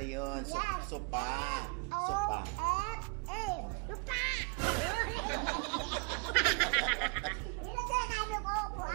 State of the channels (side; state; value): left; quieter; 32.9 dB